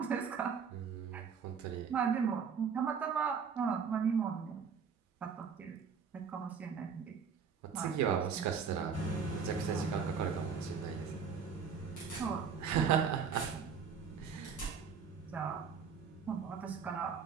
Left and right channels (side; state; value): left; quieter; 6.3 dB